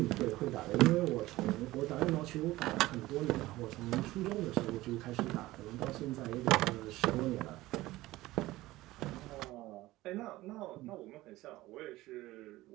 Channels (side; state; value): left; quieter; 17.8 dB